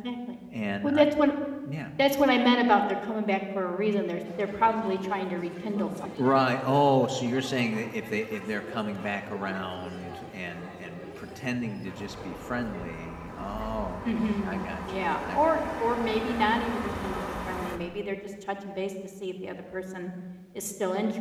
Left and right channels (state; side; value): identical; both; correlation 1.00